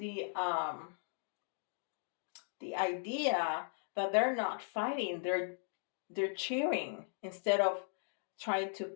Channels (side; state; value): right; silent; digital silence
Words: idea that they're not fighting. They're cheering instead of trying to